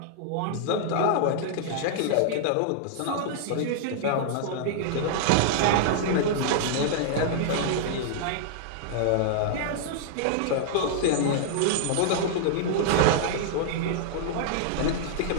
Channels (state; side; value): different; both; correlation -0.01